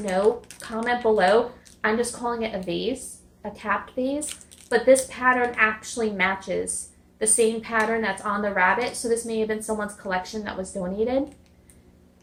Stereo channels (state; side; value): identical; both; correlation 1.00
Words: comment below. I'm just calling it a vase, a capped vase. But this pattern actually matches the same pattern that's on the rabbit. So this may have been someone's collection that was donated.